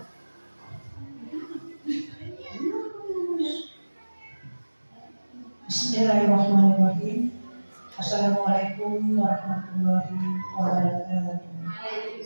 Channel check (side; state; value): both; inverted; correlation -1.00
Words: Bismillahirrahmanirrahim. Assalamualaikum warahmatullahi wabarakatuh.